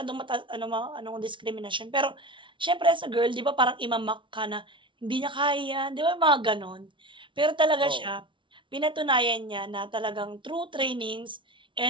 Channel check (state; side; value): late; left; 0.24 ms